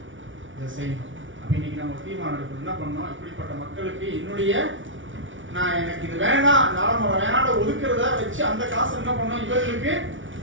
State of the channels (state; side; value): late; left; 0.56 ms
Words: இதை செய்யணும். அப்ப இன்னைக்கு நம்ம தீர்மானம் எடுக்கணும். என்ன பண்ணணும்? இப்படிப்பட்ட மக்களுக்கு என்னுடைய நான் எனக்கு இது வேணாம், நாளை வேணாம் ஒதுக்குறத வச்சு அந்த காசு என்ன பண்ணணும், இவர்களுக்கு